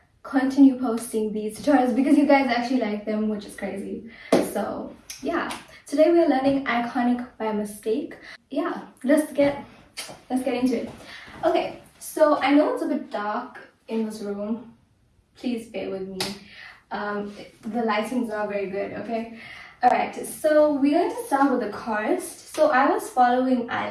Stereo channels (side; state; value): both; identical; correlation 1.00